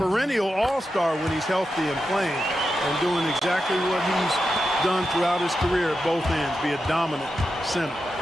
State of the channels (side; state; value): both; normal; correlation 0.89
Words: all-star when he's healthy and playing and doing exactly what he's done throughout his career at both ends, be a dominant center.